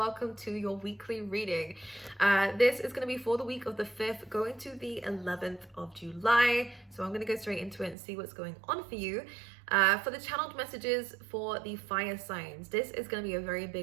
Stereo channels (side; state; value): left; drops out; at 8.0 s